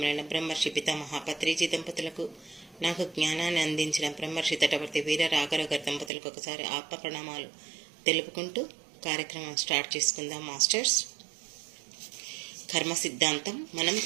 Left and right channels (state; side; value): drops out; left; at 6.1 s